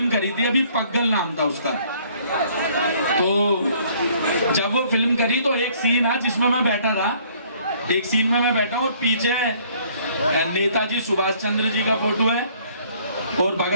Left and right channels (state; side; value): inverted; both; correlation -0.60